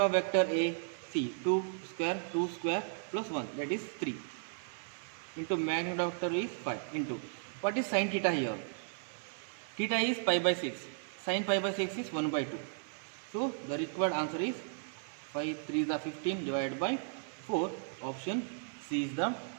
vector A? See 2 square plus 1, that is 3. Into magnitude of vector is 5 into what is sin theta here? Theta is pi by 6. Sin pi by 6 is 1 by 2. So the required answer is 5 3 is 15 divided by 4. Option C is the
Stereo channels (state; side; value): silent; left; 54 dB below the other